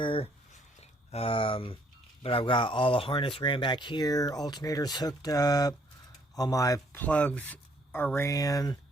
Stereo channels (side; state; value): both; normal; correlation 0.65